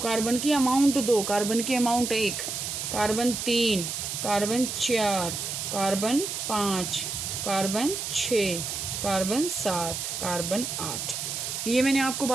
की अमाउंट 2, कार्बन की amount 1, carbon 3, carbon 4, carbon 5, carbon 6, carbon 7, carbon 8। ये मैंने आपको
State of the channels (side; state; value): right; noise; hiss, 4 dB below the sound